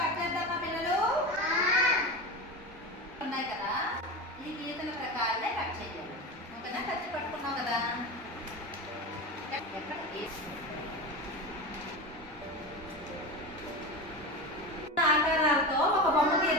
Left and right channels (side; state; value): both; normal; correlation 0.24